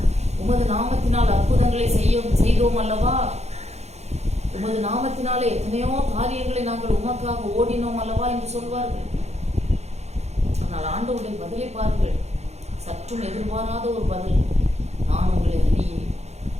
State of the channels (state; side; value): late; left; 0.32 ms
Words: உமது நாமத்தினால் அற்புதங்களை செய்தோம் அல்லவா, உமது நாமத்தினாலே எத்தனையோ காரியங்களை நாங்கள் உமக்காக ஓடினோம் அல்லவா என்று சொல்வார்கள். ஆனால் ஆண்டவருடைய பதிலை பாருங்கள், சற்றும் எதிர்பாராத ஒரு பதில். நான் உங்களை அறியேன்.